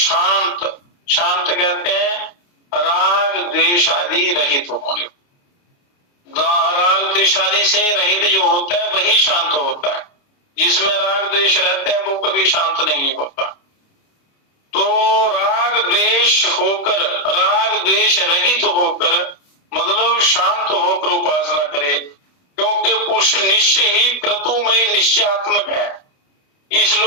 शांत कहते हैं राग द्वेष आदि रहित होने, राग राग द्वेष आदि से रहित जो होता है वही शांत होता है। जिसमें राग द्वेष रहते हैं वो कभी शांत नहीं होता। तो राग द्वेष होकर, राग द्वेष रहित होकर मतलब शांत होकर उपासना करे, क्योंकि पुरुष निश्चय ही क्रतुमय निश्चयात्मक है। इस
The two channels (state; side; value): late; right; 29 ms